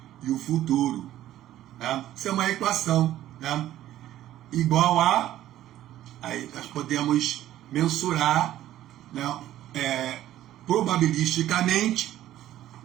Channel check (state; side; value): quieter; left; 13.2 dB